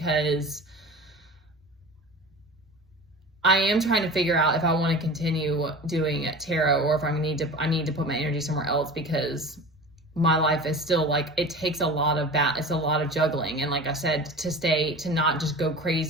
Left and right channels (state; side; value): normal; both; correlation 0.35